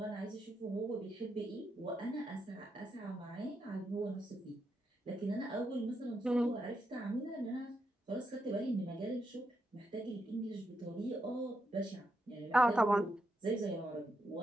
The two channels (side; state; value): both; normal; correlation 0.82